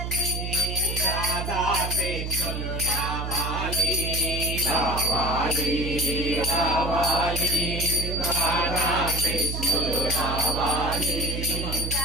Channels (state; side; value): noise; right; hum, 4 dB below the sound